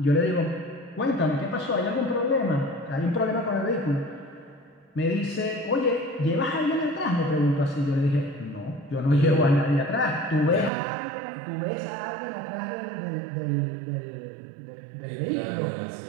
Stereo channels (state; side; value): drops out; left; at 10.7 s